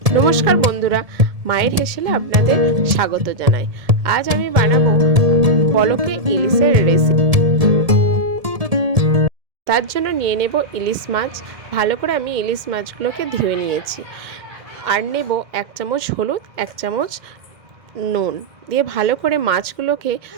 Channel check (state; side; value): late; left; 1.7 ms